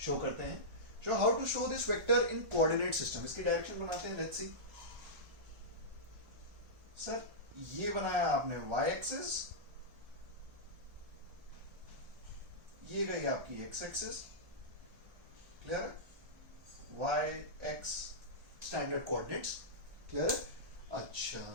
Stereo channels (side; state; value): left; late; 1.4 ms